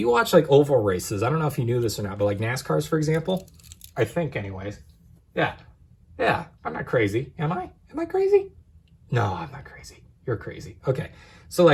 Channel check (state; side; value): identical; both; correlation 1.00